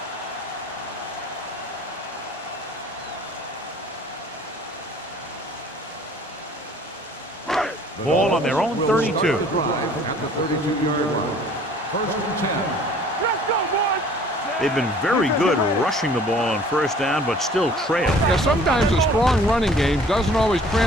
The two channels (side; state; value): both; normal; correlation 0.52